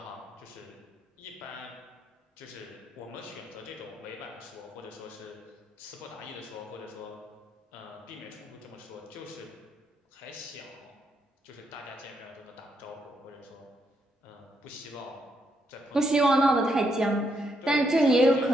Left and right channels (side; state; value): both; normal; correlation 0.77